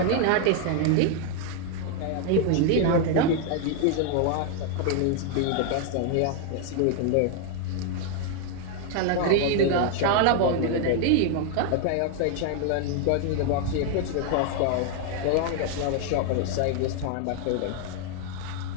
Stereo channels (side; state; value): both; different; correlation 0.01